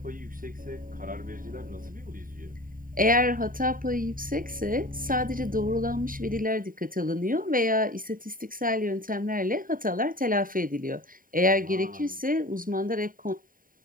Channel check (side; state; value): left; late; 0.41 ms